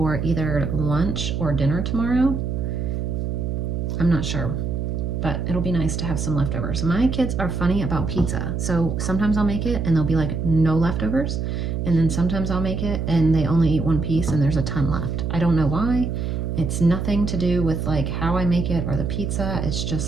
either lunch or dinner tomorrow. I'm not sure, but it'll be nice to have some leftovers. My kids are funny about pizza. So sometimes I'll make it and there'll be like no leftovers. And then sometimes I'll make it and they only eat one piece and there's a ton left. I don't know why. It's nothing to do with like how I make it or the pizza. It's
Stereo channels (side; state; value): right; noise; hum, 2 dB below the sound